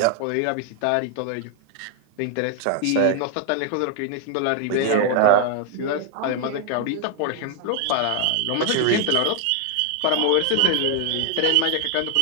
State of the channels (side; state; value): both; different; correlation 0.00